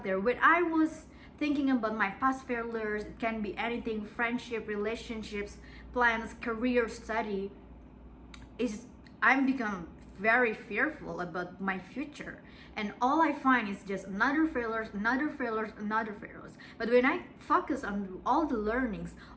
there. When I was thinking about my past failures, it can be anything: friendship, relationships, plans, career, study, I'm become very fearful about my future, and all I find is just another failures. But when I focus on all the learnings,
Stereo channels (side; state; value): both; identical; correlation 1.00